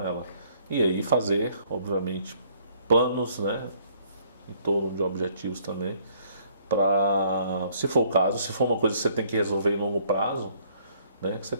ela. E aí fazer, obviamente, planos, né, em torno de objetivos também, para, se for o caso, se for uma coisa que você tem que resolver em longo prazo, né, que você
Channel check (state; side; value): inverted; both; correlation -0.63